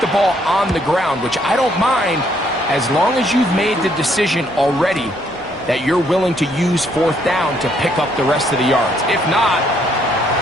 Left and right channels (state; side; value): normal; both; correlation 0.69